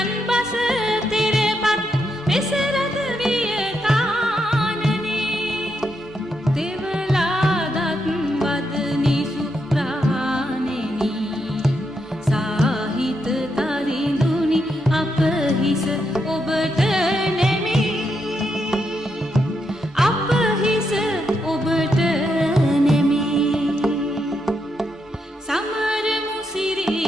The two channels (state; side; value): normal; both; correlation 0.81